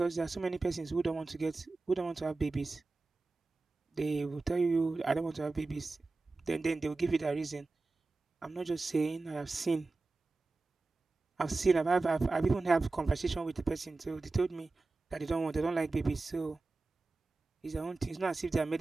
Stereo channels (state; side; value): quieter; left; 3.5 dB